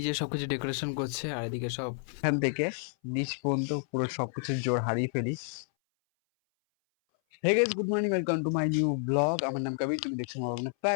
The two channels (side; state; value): right; silent; 58 dB below the other